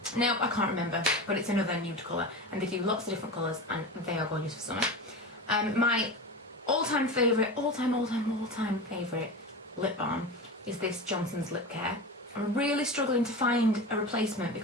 No, I can't remember, but it's another nude colour, and they do lots of different colours, and they are gorgeous for summer. My all-time favourite lip balm is this Johnson's Lip Care. I'm really struggling to find a replacement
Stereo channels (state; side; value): normal; both; correlation 0.27